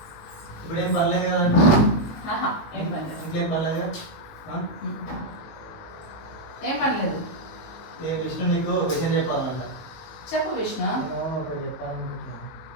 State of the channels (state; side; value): late; right; 19 ms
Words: ఇప్పుడు ఏం పర్లేదు కదా? ఇంకేం పర్లేదు కదా? ఏం పర్లేదు. విష్ణు నీకు విషయం చెప్పాలంట. చెప్పు విష్ణు. ఒకటి చెప్పాలనుకుంటున్నా.